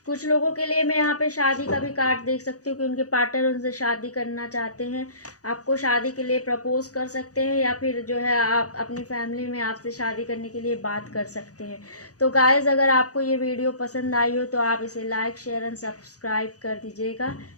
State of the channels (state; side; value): late; right; 0.67 ms